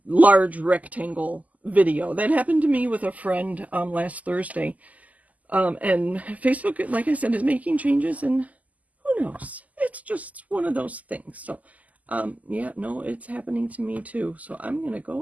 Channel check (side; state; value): left; late; 0.076 ms